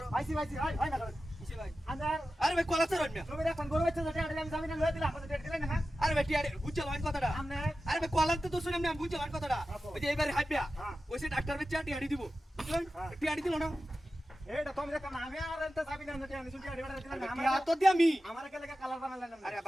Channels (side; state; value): both; normal; correlation 0.94